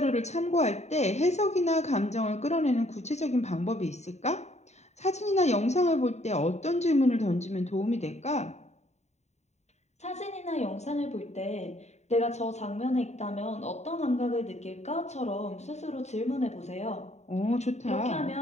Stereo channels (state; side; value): late; right; 0.32 ms